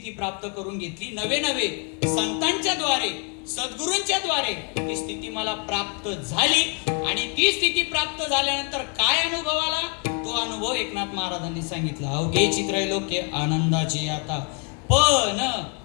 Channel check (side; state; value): right; quieter; 37.9 dB